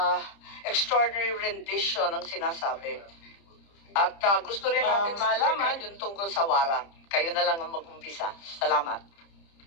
extraordinary rendition ang sinasabi. At gusto rin natin malaman yung tungkol sa warrant. Kayo na lang ang mag-umpisa. Salamat.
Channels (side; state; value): right; late; 30 ms